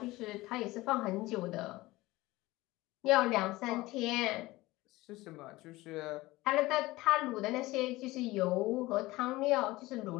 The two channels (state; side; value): quieter; right; 19.4 dB